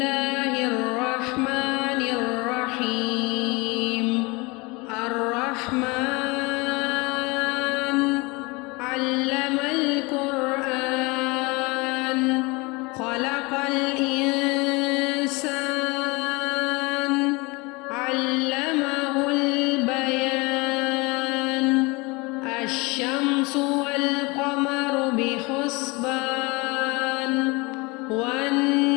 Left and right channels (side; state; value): right; quieter; 26.1 dB